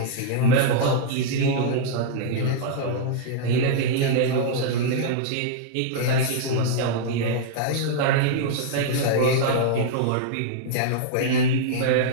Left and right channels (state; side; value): different; both; correlation -0.02